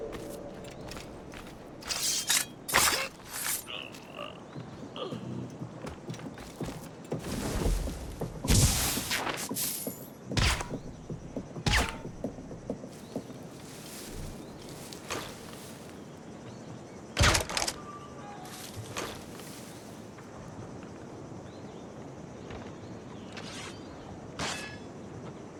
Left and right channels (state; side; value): identical; both; correlation 1.00